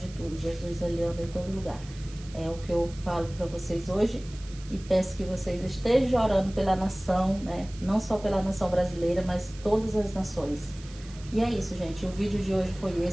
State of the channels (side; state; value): right; noise; hiss, 20 dB below the sound